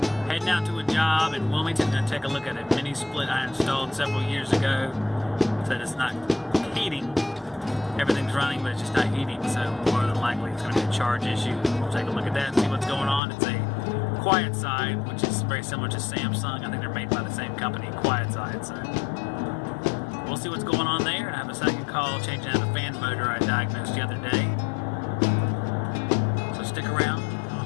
Heading out to a job in Wilmington to take a look at a mini split I installed several years ago. Said it's not heating. Everything's running, but it's just not heating, so more than likely it's going to be a charge issue. We'll take a look at that and see what's going on. It's a Quietside, which is very similar to Samsung. I think they're made by the same company, Quietside. So we'll see what's going on there. I have a second call changing out a fan motor I diagnosed the other day. So stick around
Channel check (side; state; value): right; drops out; at 13.2 s